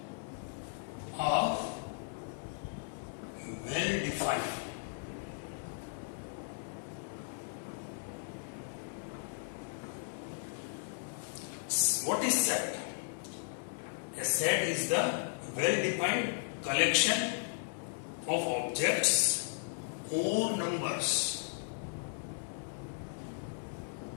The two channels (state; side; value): silent; right; 54 dB below the other